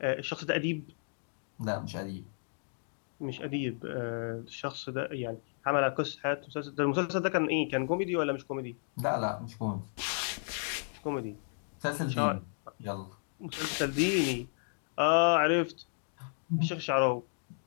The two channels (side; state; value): right; silent; digital silence